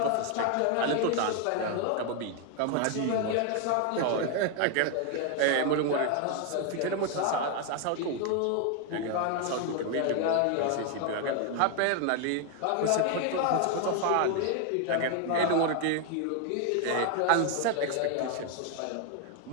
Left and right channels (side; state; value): both; different; correlation 0.01